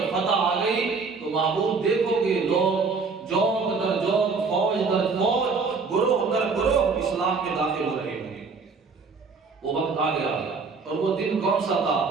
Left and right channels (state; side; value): quieter; left; 4.7 dB